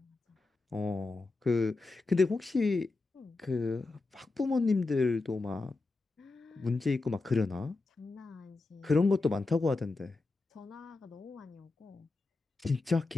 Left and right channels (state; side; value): quieter; right; 3.5 dB